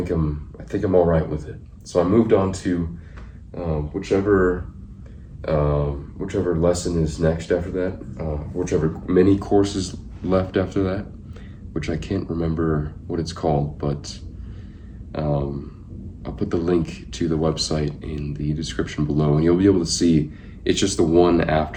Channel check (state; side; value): identical; both; correlation 1.00